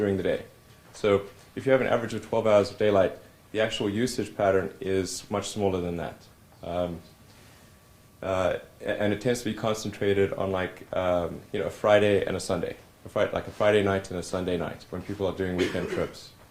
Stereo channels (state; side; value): identical; both; correlation 1.00